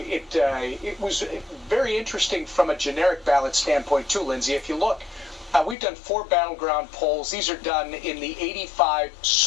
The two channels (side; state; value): right; drops out; at 5.8 s